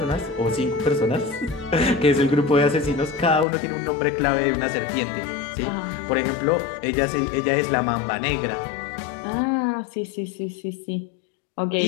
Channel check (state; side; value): drops out; right; at 3.5 s